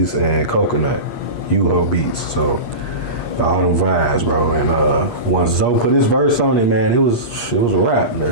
and Coconut. Yuho Beats. So all them vibes, bro. And once Zoe put his verse on it, man, it was a wrap.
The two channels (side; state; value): right; late; 8.5 ms